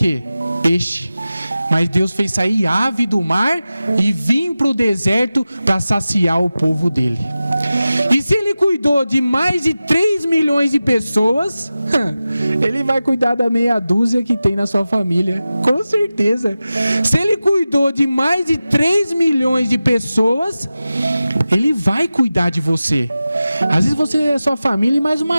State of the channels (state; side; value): inverted; both; correlation -0.95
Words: Peixe. Mas Deus fez sair ave do mar e vir para o deserto para saciar o povo dele. E se Ele cuidou de mais de 3 milhões de pessoas, Ele vai cuidar da meia dúzia que tem na sua família, com certeza. Se Ele cuidou de mais de 3 milhões de pessoas, Ele vai cuidar de você. Às vezes você é sua família e mais